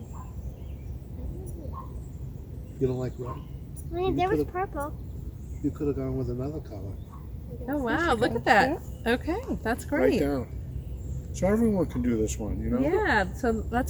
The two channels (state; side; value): identical; both; correlation 1.00